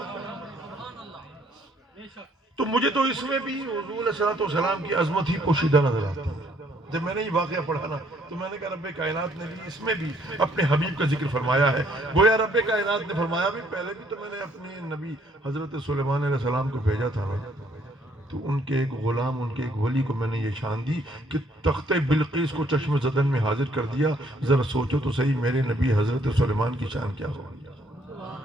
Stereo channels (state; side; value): normal; both; correlation 0.65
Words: تو مجھے تو اس میں بھی حضور علیہ الصلوۃ والسلام کی عظمت ہی پوشیدہ نظر آتی ہے۔ جب میں نے یہ واقعہ پڑھا نا تو میں نے کہا رب کائنات نے بھی اس میں بھی اپنے حبیب کا ذکر فرمایا ہے۔ گویا رب کائنات نے فرمایا بھی پہلے بھی تو میں نے اپنے نبی حضرت سلیمان علیہ السلام کو بھیجا تھا نا، تو ان کے ایک غلام، ان کے ایک ولی کو میں نے یہ شان دی کہ تخت بلقیس کو چشم زدن میں حاضر کر دیا. ذرا سوچو تو صحیح میرے نبی حضرت سلیمان کی شان کیا ہوگی.